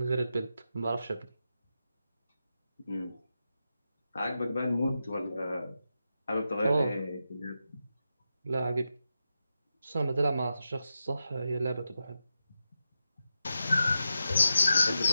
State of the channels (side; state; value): both; inverted; correlation -0.88